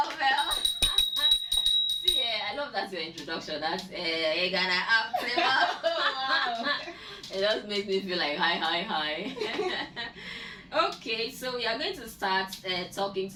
Well. See, love that's your introduction. That's you're gonna act. Wow. It just makes me feel like hi. Okay, so we are going to start talking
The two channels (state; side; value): identical; both; correlation 1.00